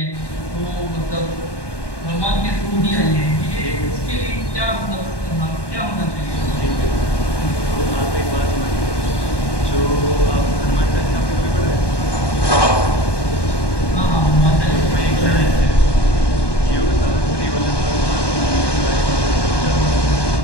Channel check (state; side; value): late; right; 1.2 ms